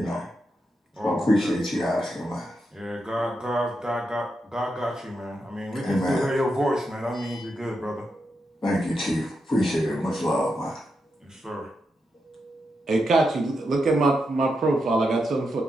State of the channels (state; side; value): normal; both; correlation 0.85